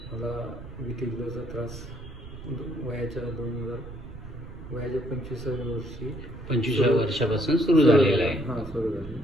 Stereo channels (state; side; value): noise; right; rumble, 14 dB below the sound